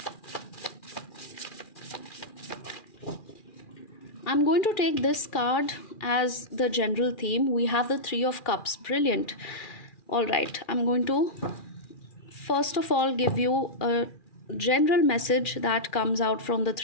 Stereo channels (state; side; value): late; right; 2.4 ms